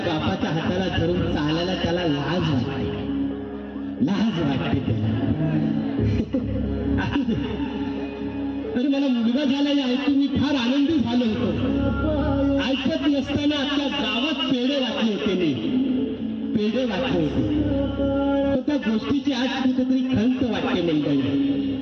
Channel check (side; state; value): both; identical; correlation 1.00